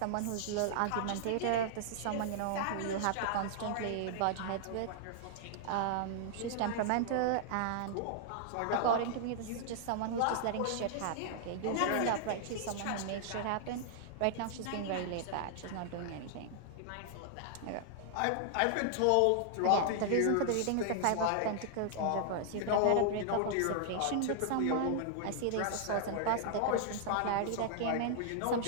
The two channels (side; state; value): both; different; correlation -0.01